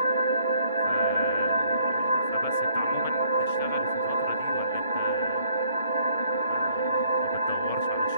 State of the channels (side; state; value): both; inverted; correlation -0.64